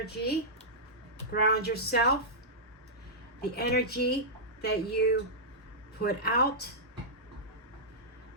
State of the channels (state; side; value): normal; both; correlation -0.12